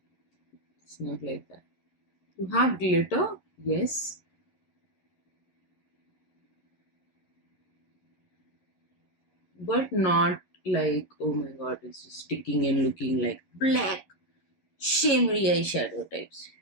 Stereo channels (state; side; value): late; right; 11 ms